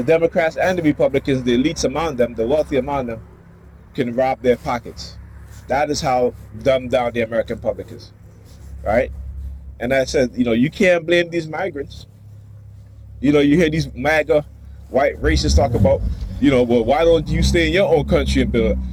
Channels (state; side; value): identical; both; correlation 1.00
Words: Democrats and the Republicans, the elites among them, the wealthy among them, can rob their pockets. That is how dumbed down the American public is, right? And I said, you can't blame these migrants. You hear these MAGA white racists talk about, well, why don't you stay in your own country and build?